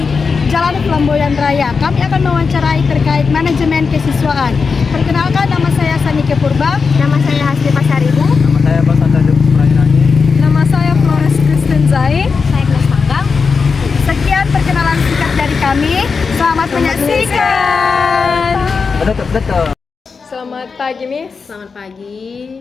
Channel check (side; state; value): right; quieter; 5.1 dB